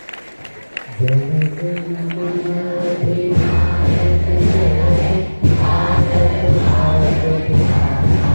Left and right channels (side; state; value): both; inverted; correlation -1.00